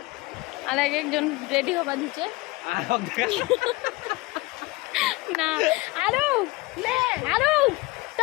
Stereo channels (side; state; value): right; quieter; 22.1 dB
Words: আর একজন রেডি হবা দিছে না আরো তো